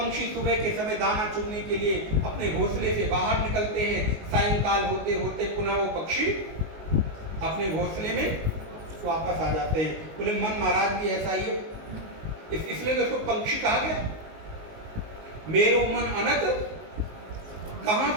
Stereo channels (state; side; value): late; left; 19 ms